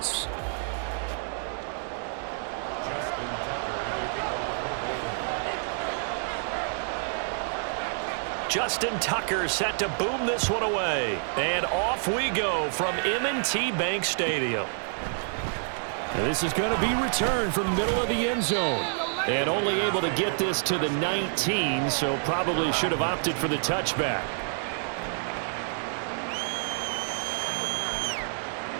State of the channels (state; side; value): silent; left; digital silence